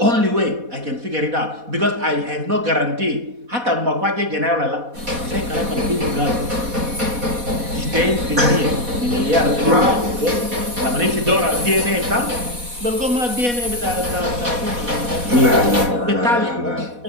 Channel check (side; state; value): left; late; 4.1 ms